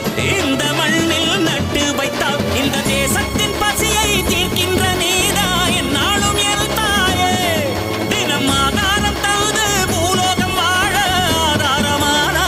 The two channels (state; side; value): identical; both; correlation 1.00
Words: இந்த மண்ணில் நட்டு வைத்தால் இந்த தேசத்தின் பசியை தீர்க்கின்ற நீதா என்னாலும் என் தாயே. தினம் ஆதாரம் தந்து பூலோகம் வாழ